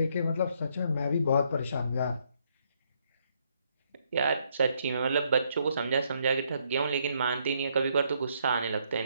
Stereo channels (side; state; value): both; inverted; correlation -0.72